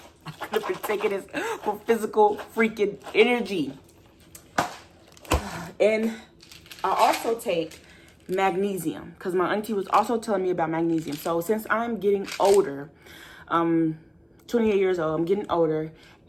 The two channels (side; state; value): both; identical; correlation 1.00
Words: I could have been taking this for physical freaking energy. And I also take magnesium, because my auntie was also telling me about magnesium. So since I'm getting older, 28 years old, I'm getting older,